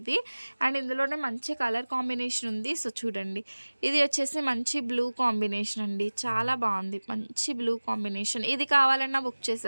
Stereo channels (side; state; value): both; inverted; correlation -1.00